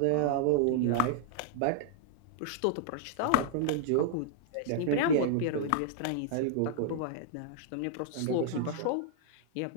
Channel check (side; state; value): both; different; correlation -0.01